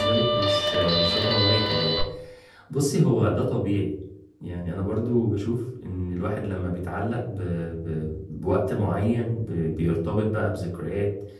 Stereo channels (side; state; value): both; identical; correlation 1.00